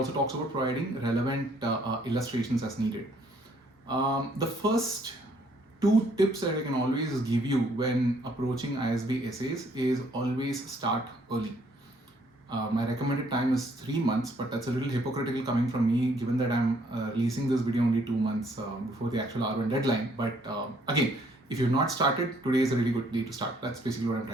talks about providing relevant illustrations as needed. The first 2 tips that I can always give you when approaching ISB essays is always start early. My recommended time is 3 months, but that's a little hypocritical coming from me given that I'm releasing this video only 2 months before the actual R1 deadline. But again, if you've not started, today is a really good day to start. That's basically what I'm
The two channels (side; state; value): both; normal; correlation 0.65